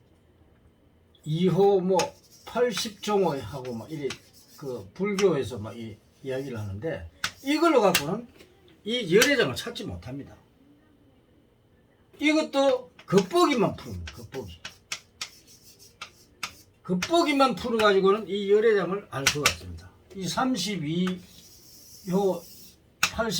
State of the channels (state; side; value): identical; both; correlation 1.00